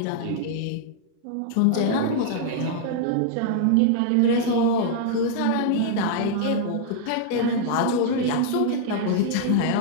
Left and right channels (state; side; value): different; both; correlation -0.01